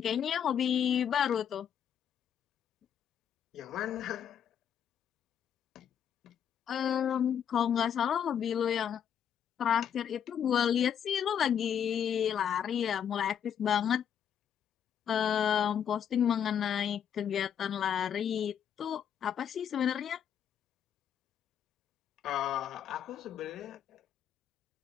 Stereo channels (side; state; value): right; quieter; 8.8 dB